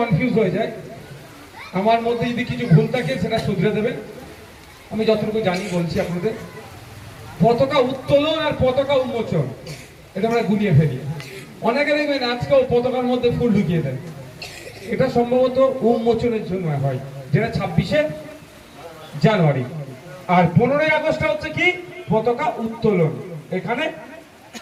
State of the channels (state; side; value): identical; both; correlation 1.00